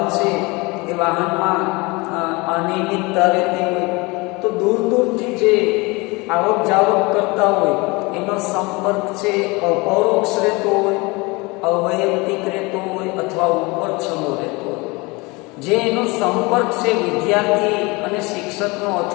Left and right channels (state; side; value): quieter; right; 25.4 dB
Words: છે એ વાહનમાં અનિયમિતતા રહેતી હોય, તો દૂર દૂરથી જે આવક જાવક કરતા હોય એનો સંપર્ક છે અપરોક્ષ રહેતો હોય, અવૈયક્તિક રહેતો હોય અથવા ઉપર છલો રહેતો હોય. જે એનો સંપર્ક છે વિદ્યાર્થી અને શિક્ષકનો